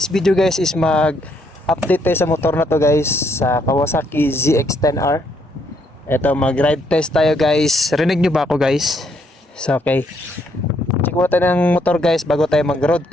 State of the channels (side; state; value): both; normal; correlation 0.72